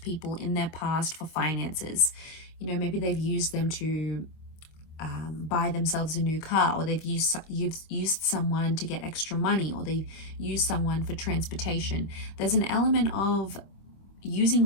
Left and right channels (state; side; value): late; right; 25 ms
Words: people in their past for finances. You know, maybe they've used them to buy themselves a new car, or you've used someone to get extra money, or they've used someone for transportation. There's an element of